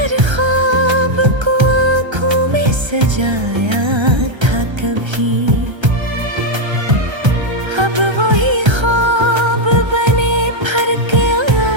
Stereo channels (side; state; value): left; late; 1.3 ms